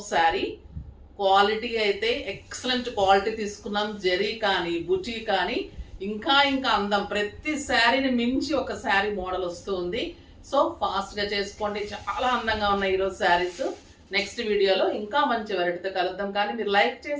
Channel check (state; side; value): identical; both; correlation 1.00